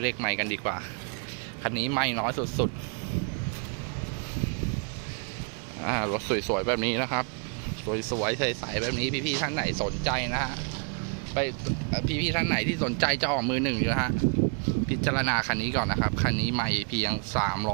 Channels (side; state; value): left; quieter; 38.9 dB